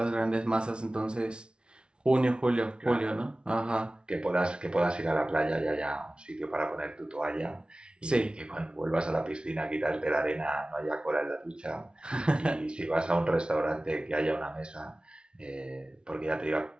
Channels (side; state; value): left; late; 0.056 ms